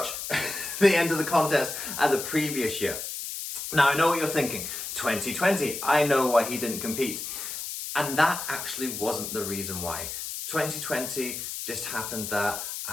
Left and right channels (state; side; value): noise; left; hiss, 6 dB below the sound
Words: the end of the contest at the previous year. Now, I know what you're thinking. 2020, I know why he didn't compete. And that actually wasn't the reason why. 2020 just happened that